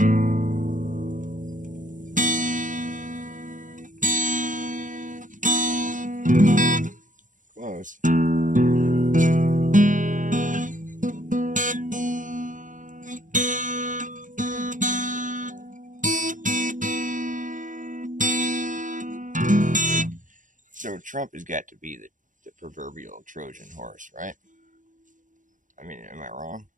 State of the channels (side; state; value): left; late; 0.37 ms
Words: Close. So Trump has got to be the proverbial Trojan horse, right? I mean, am I wrong?